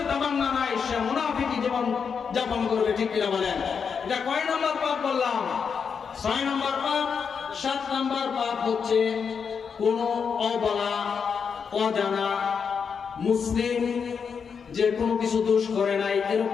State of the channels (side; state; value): right; quieter; 6.3 dB